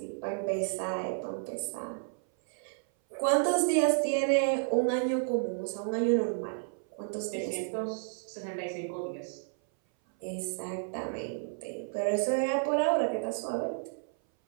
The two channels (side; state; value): left; silent; 57 dB below the other